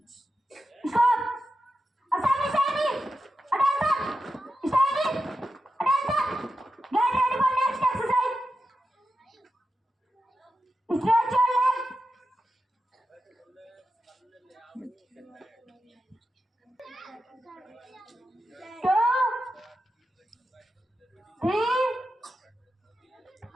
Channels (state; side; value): normal; both; correlation 0.90